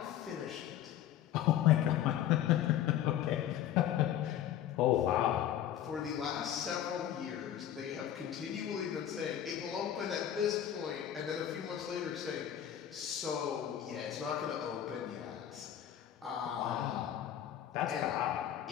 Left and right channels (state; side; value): quieter; right; 10.9 dB